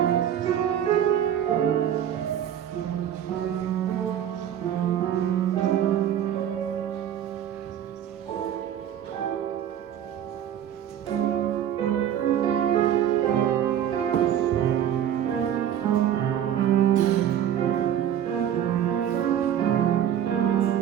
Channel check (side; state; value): left; quieter; 10.1 dB